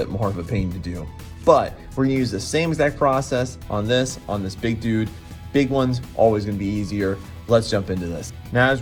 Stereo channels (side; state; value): both; identical; correlation 1.00